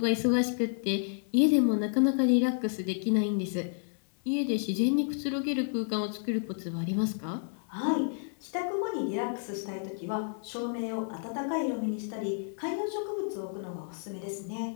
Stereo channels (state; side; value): silent; right; digital silence